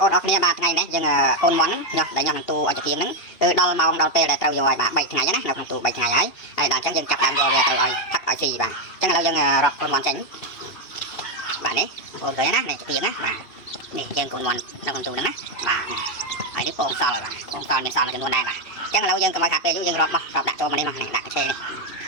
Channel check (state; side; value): late; right; 2.7 ms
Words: អូនអរគ្នាបាទថ្ងៃនេះយើងកូនមន់ញ៉ោះដែលញ៉ោះនឹងទូឲ្យជាទៀងហ្នឹងគឺដល់ម៉ោងដល់ពេលដែលត្រូវយកឲ្យបាទ3ថ្ងៃណានៅក្នុងទូ3ថ្ងៃហើយដល់អញ្ចឹងយើងចាប់ដើមយកវាទៅឲ្យផឹកឲ្យស៊ីបាទអញ្ចឹងឥឡូវយើងរាប់កូនមន់ចេញបាទនេះបងប្អូនឃើញណានេះជាទៀងណាបាទនេះយើងកូនមន់នៅក្នុងទូហ្នឹងណាបាទហើយនេះពងសល់បាទពងសល់មានសល់មួយចំនួនដែរបាទអញ្ចឹងឥឡូវយើងកុំឲ្យខាតពេលយូរយើងរាប់មករាប់ដាក់ចូលមកនេះមកនេះដាក់កញ្ឆេនេះ